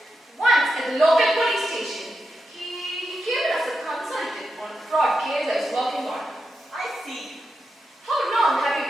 Once at the local police station, he came in as a consultant on a fraud case I was working on. I see. How long have you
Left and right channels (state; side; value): normal; both; correlation 0.87